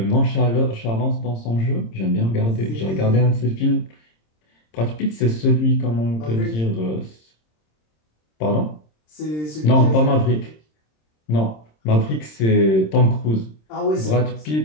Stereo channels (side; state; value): right; late; 26 ms